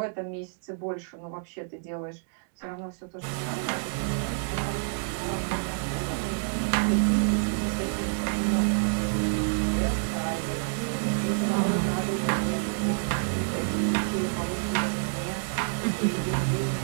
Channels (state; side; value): silent; left; digital silence